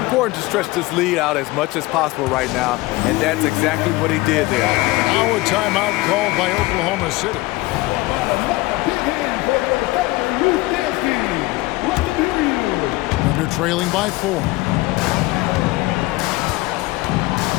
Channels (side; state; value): right; quieter; 20.7 dB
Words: to stretch this lead out as much as possible right now, and that's exactly what he did there. Now a timeout called by Oklahoma City. Under trailing by 4.